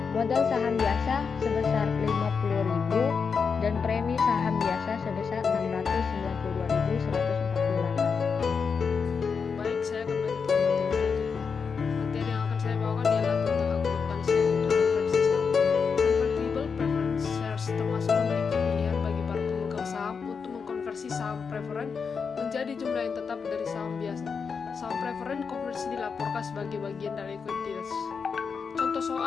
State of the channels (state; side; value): quieter; right; 5.7 dB